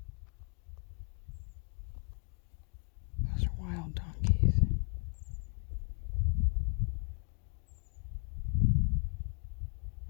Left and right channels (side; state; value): right; quieter; 39.4 dB